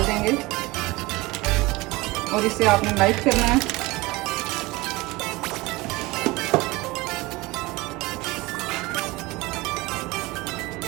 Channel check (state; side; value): quieter; left; 21.9 dB